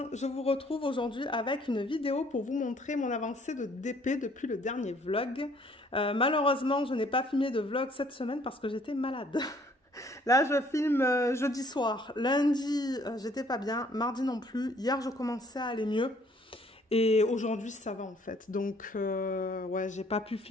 je vous retrouve aujourd'hui avec une vidéo pour vous montrer mon avancée de DP depuis le dernier vlog. Malheureusement, je n'ai pas filmé de vlog cette semaine parce que j'étais malade. Là, je filme jeudi soir. Lundi, j'étais pas bien. Mardi non plus. Hier, je commençais à aller mieux. Et aujourd'hui, ça va en fait. Donc, ouais, j'ai pas pu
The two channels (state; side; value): normal; both; correlation 0.61